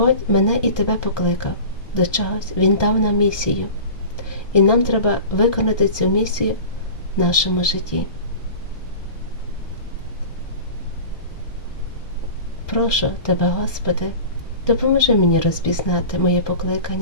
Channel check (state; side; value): late; right; 1.2 ms